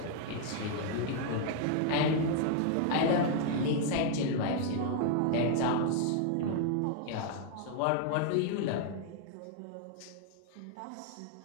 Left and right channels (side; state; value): both; different; correlation 0.00